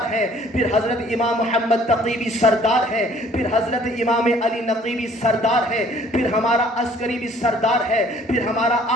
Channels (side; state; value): both; normal; correlation 0.57